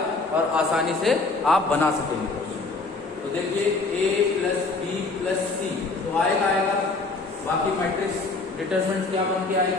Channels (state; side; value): quieter; right; 3.7 dB